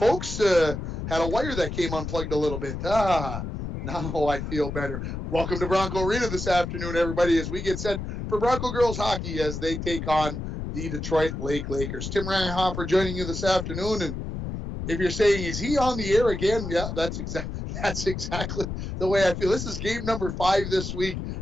had a wire that came unplugged a little bit. Now I feel better. Welcome to Bronco Arena this afternoon, everybody, as we get set for Bronco girls hockey as they take on the Detroit Lake Lakers. Tim Reinhofer joining you this afternoon. And if you're saying, is he on the air again? Yeah, that's exactly the way I feel. This is game number 5 this week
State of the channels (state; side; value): noise; left; rumble, 5 dB below the sound